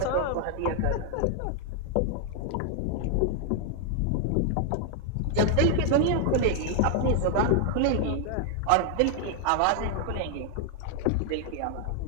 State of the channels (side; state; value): both; different; correlation 0.00